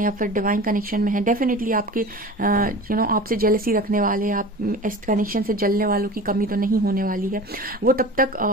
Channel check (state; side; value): normal; both; correlation 0.35